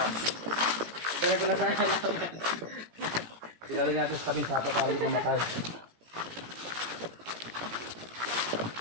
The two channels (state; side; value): late; left; 17 ms